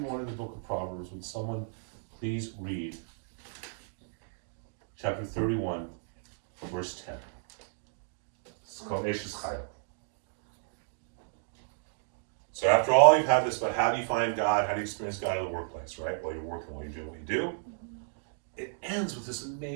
of the book of Proverbs, would someone please read chapter 31, verse 10. It's called Eshes Chayil. So after all, you've had this about how do you find God, how do you experience God in the workplace, right? While you're working, while you're doing what you do. It ends with this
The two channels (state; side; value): silent; left; digital silence